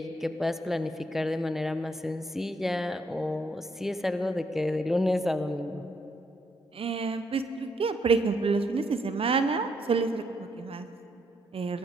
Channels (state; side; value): normal; both; correlation 0.75